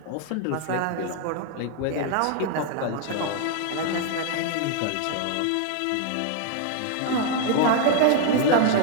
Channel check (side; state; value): both; different; correlation 0.00